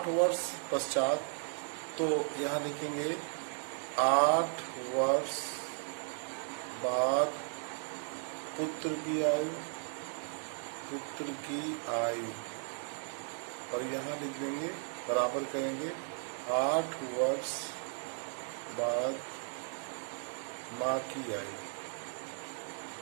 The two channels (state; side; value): silent; left; 54 dB below the other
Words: वर्ष पश्चात, तो यहाँ लिखेंगे 8 वर्ष बाद पुत्र की आयु, और यहाँ लिख देंगे बराबर करेंगे 8 वर्ष बाद माँ की आयु,